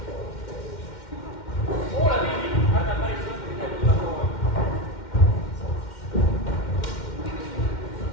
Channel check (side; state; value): right; late; 2.1 ms